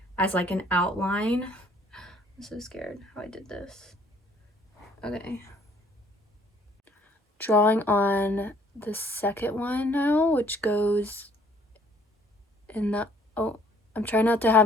as like an outline. I'm so scared how I did this. Okay. Drawing on the second one now, which goes in the, oh, I'm trying not to have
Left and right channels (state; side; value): normal; both; correlation 0.60